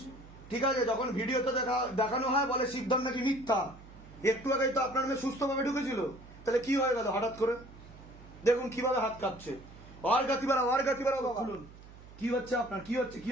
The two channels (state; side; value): noise; right; hum, 19 dB below the sound